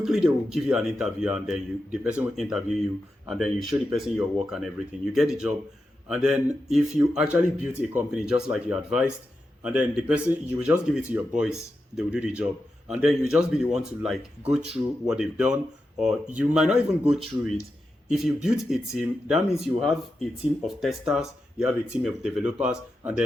they will give you an interview, and then the person will interview you, and then you show the person your work and everything. You get the job, and then if you actually built a company just like you advised, and then the person, you will just give it to your boys, they will do the job, and then you just be the one to like go through what they've done, or you might not even go through it. If you build a team, that means you have a team of testers, you have a team of developers, and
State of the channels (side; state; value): both; normal; correlation 0.89